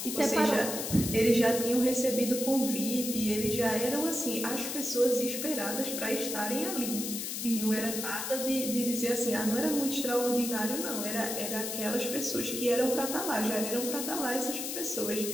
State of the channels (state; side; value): noise; left; hiss, 4 dB below the sound